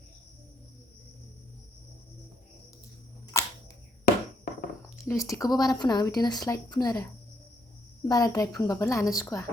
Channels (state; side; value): normal; both; correlation 0.73